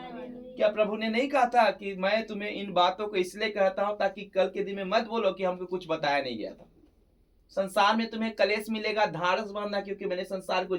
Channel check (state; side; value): identical; both; correlation 1.00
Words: प्रभु ने नहीं कहा था कि मैं तुम्हें इन बातों को इसलिए कहता हूं ताकि कल के दिन में मत बोलो कि हमको कुछ बताया नहीं गया था। संसार में तुम्हें कलेश मिलेगा, धारस बांधना, क्योंकि मैंने संसार को